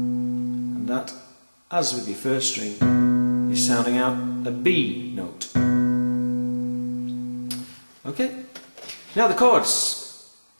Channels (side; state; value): both; inverted; correlation -1.00